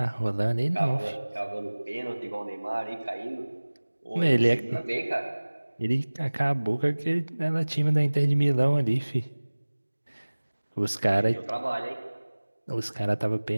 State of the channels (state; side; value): inverted; both; correlation -1.00